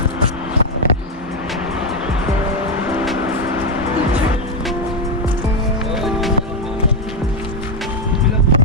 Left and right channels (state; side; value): normal; both; correlation 0.04